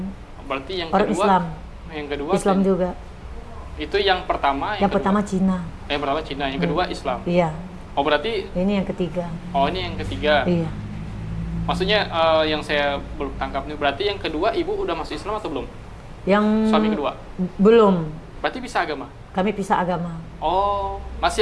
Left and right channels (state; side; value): identical; both; correlation 1.00